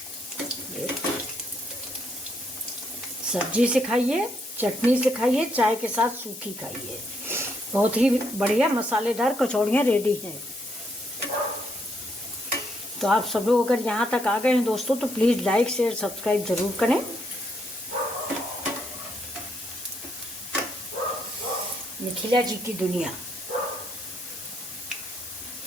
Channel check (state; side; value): noise; left; hiss, 12 dB below the sound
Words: सब्जी से खाइए, चटनी से खाइए, चाय के साथ सूखी खाइए। बहुत ही बढ़िया मसालेदार कचौड़ियाँ रेडी हैं। तो आप सब लोग अगर यहाँ तक आ गए हैं दोस्तों, तो प्लीज़ लाइक शेयर सब्सक्राइब ज़रूर करें। मिथिला जी की दुनिया।